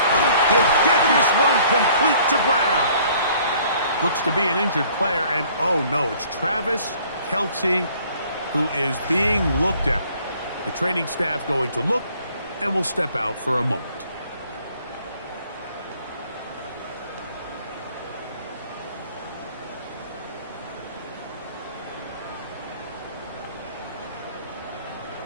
He'll get this one complete to Brown. Looks to be an injured player, and oh no, it's Travis Kelce who is being looked at. The training staff going to look and will step out for a moment.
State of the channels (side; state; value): both; inverted; correlation -0.57